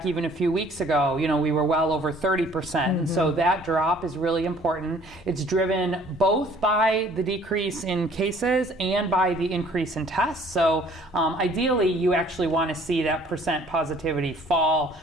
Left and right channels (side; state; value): both; normal; correlation 0.56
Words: even a few weeks ago, we were well over 30%. And so that drop is really important. It's driven both by the decrease in cases and by the increase in tests. So ideally, you actually want to see that percent positivity fall